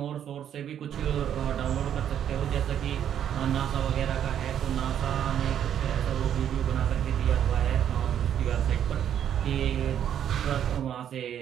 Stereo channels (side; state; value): left; quieter; 9.6 dB